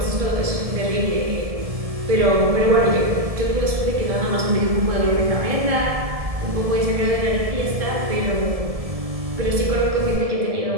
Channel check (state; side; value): late; left; 1.7 ms